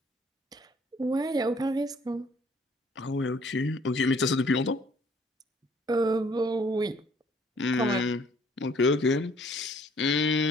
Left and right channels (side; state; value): both; normal; correlation 0.60